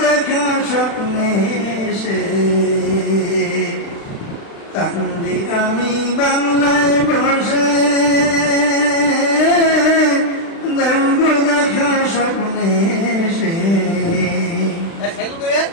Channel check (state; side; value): late; right; 36 ms